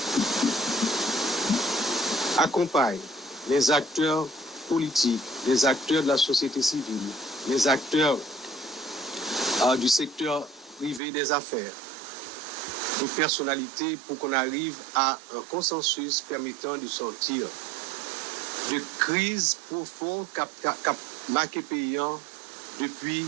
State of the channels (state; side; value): drops out; left; at 11.0 s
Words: accompagne les acteurs politiques, les acteurs de la société civile, les acteurs du secteur privé des affaires, des personnalités pour qu'on arrive à un consensus permettant de sortir de crise profonde qu'a marqué paysan depuis